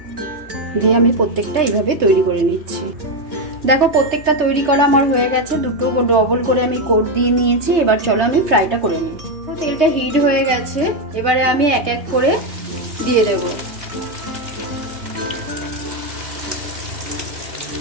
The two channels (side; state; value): left; late; 3.3 ms